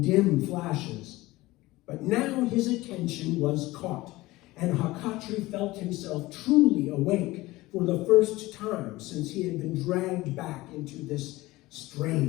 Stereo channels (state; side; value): quieter; right; 19.2 dB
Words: dim flashes. But now his attention was caught, and Hakatri felt himself truly awake for the first time since he had been dragged back into this